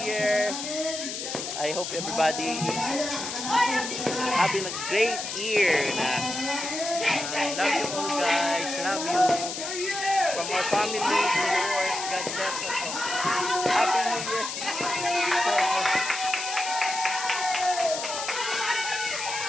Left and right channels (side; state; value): left; noise; hiss, 5 dB below the sound